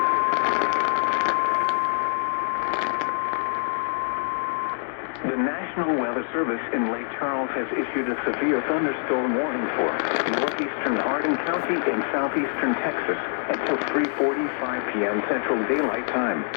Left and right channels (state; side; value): silent; right; 61 dB below the other